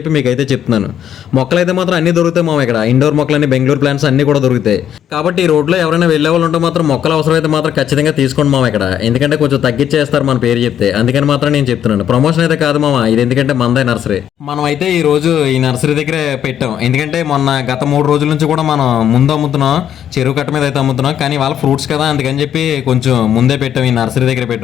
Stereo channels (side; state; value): right; quieter; 9.9 dB